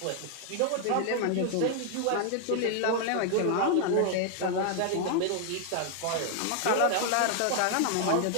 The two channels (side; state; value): both; different; correlation 0.00